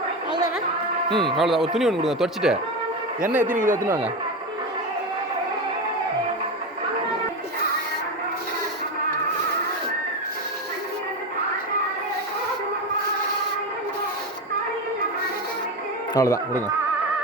அவ்வளோதான். ஒரு துணி ஒன்று கொடுங்க தொடச்சிட்டு. எண்ணெய் எத்தனை இது எடுத்துன்னு வாங்க. அவ்வளோதான் கொடுங்க.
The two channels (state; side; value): normal; both; correlation 0.18